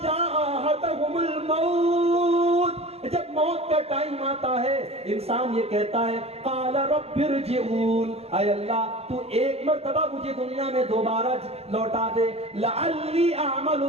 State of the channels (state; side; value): late; left; 0.30 ms